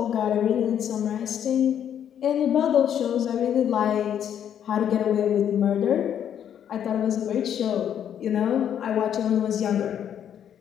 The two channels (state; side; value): quieter; right; 9.4 dB